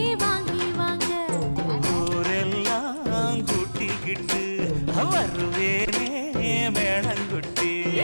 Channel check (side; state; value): both; inverted; correlation -1.00